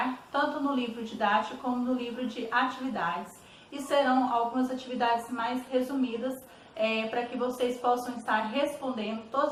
tanto no livro didático como no livro de atividades e serão algumas atividades mais resumidas para que vocês possam estar respondendo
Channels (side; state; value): both; identical; correlation 1.00